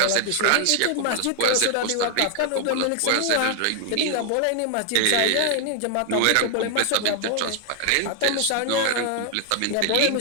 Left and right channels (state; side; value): different; both; correlation 0.00